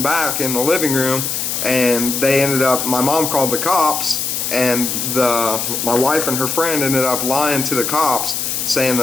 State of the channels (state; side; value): noise; left; hiss, 2 dB below the sound